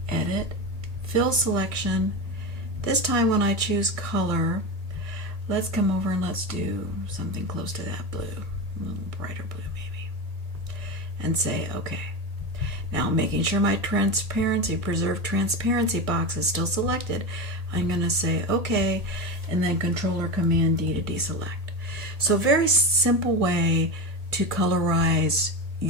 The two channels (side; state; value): left; late; 1.9 ms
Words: Edit, Fill Selection. This time when I choose color, let's come over and let's do something close to that blue, a little brighter blue maybe, and say OK. Now, making sure my Preserve Transparency box is still selected, I'm going to say OK, and then Control or Command D to deselect. So a very simple way to colorize